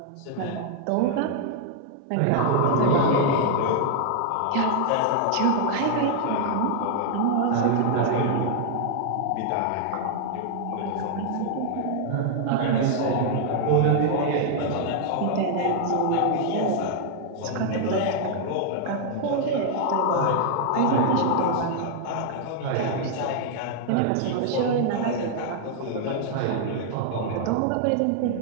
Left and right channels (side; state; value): both; different; correlation 0.00